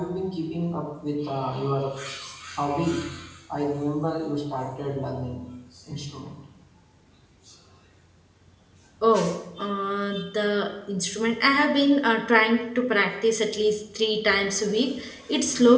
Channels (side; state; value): both; identical; correlation 1.00